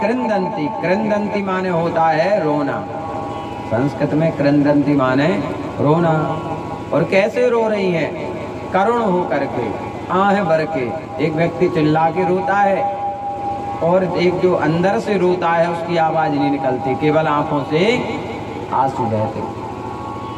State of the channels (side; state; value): both; identical; correlation 1.00